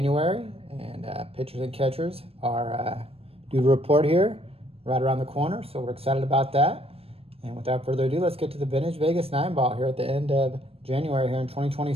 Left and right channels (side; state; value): left; late; 0.28 ms